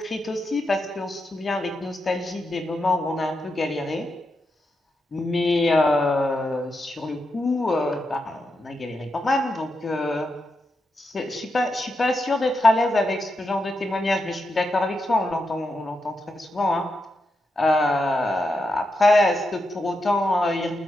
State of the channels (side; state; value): both; normal; correlation 0.86